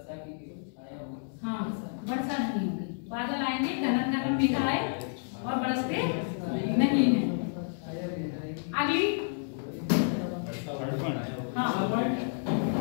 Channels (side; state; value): right; silent; digital silence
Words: की छाया होगी, हाँ वर्षा नहीं होगी, बादल आएंगे, घना घना मेघ आए और बरसते नहीं है। अगली, हाँ